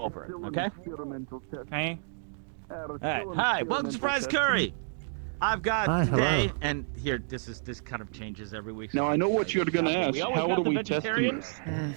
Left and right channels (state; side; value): silent; left; digital silence